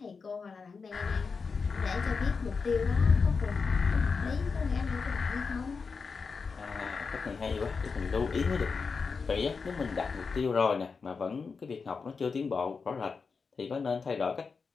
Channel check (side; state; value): right; quieter; 5.0 dB